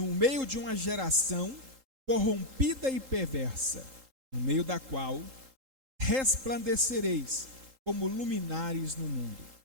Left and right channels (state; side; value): late; left; 3.8 ms